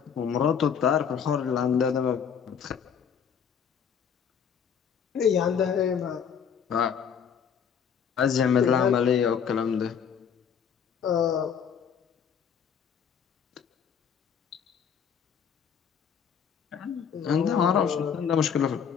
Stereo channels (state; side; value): quieter; right; 7.4 dB